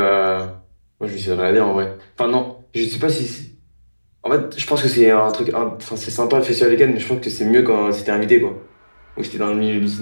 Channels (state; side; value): inverted; both; correlation -1.00